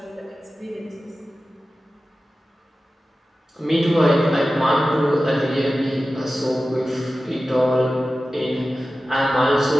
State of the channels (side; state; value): both; normal; correlation 0.95